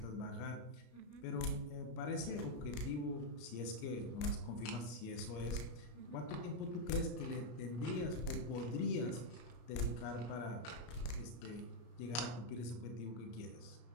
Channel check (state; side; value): late; right; 33 ms